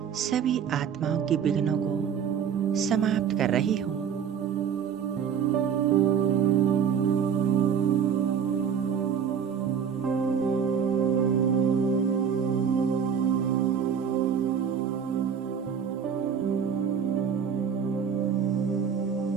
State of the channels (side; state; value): left; quieter; 7.4 dB